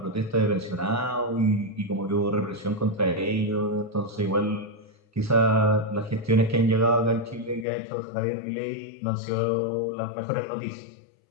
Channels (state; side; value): drops out; right; at 7.7 s